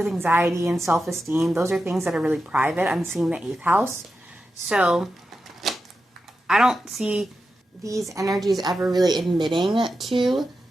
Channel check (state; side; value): normal; both; correlation 0.90